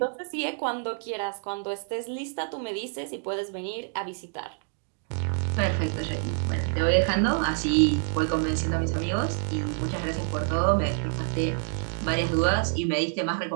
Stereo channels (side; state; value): left; silent; 60 dB below the other